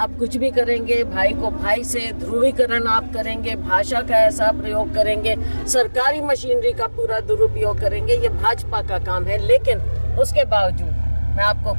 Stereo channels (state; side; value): inverted; both; correlation -1.00